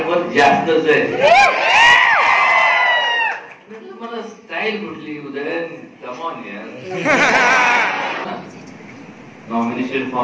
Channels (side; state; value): both; identical; correlation 1.00